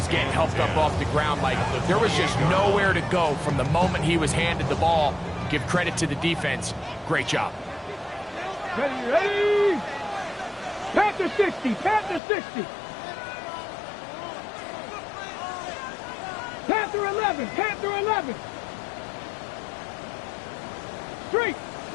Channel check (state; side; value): drops out; right; at 12.2 s